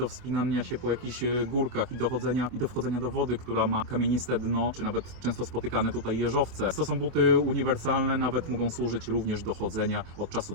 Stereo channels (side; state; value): left; late; 24 ms